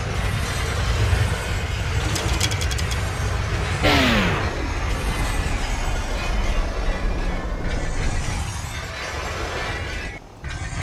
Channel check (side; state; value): both; identical; correlation 1.00